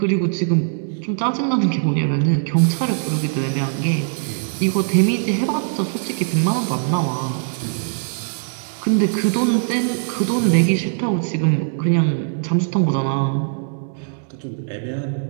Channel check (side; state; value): left; silent; 65 dB below the other